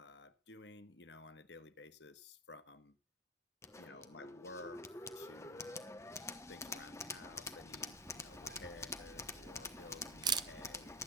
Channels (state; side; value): normal; both; correlation 0.18